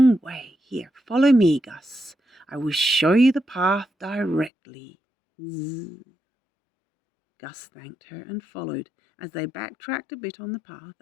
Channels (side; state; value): right; drops out; at 4.5 s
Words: way. Here, follow me, Gus. I will show you the path directly." Zzz. Gus thanked her and followed as they backtracked a bit on the path